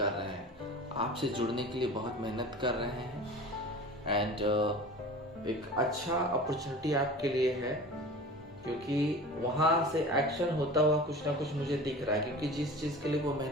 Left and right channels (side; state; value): both; normal; correlation 0.37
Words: रहे हैं, आपसे जुड़ने के लिए बहुत मेहनत कर रहे हैं। एंड एक अच्छा अपॉर्चुनिटी आपके लिए है, क्योंकि वहाँ से एक्शन होता हुआ कुछ ना कुछ मुझे दिख रहा है, क्योंकि जिस चीज़ के लिए वो